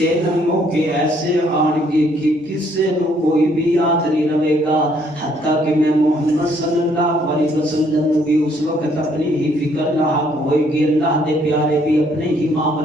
موقع ایسے آن گے کہ کسے نو کوئی بھی یاد نہیں رہے گا، حتیٰ کہ میں محمد صلی اللہ علیہ وسلم بھی اس وقت اپنی ہی فکر لاحق ہوئے گی، اللہ دے پیارے بھی اپنے ہی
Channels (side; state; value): both; normal; correlation 0.66